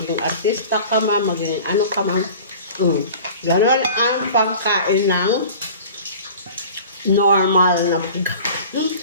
artista ka man, maging ano ka man. Ganon ang pagkain ng normal na pagkain.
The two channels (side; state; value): both; inverted; correlation -0.41